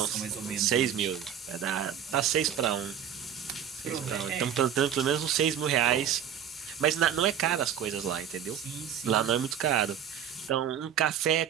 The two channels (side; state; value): left; quieter; 8.8 dB